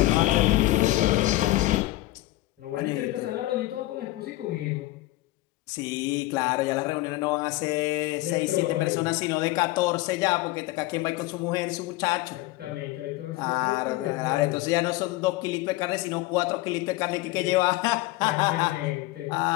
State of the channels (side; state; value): right; quieter; 18.2 dB